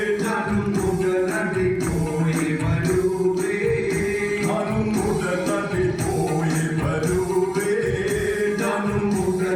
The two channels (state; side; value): identical; both; correlation 1.00